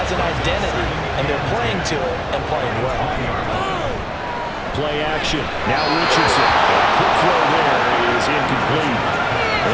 an identity, and they're playing to it and playing well. Play action. Now Richardson. Quick throw there is incomplete.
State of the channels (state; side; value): identical; both; correlation 1.00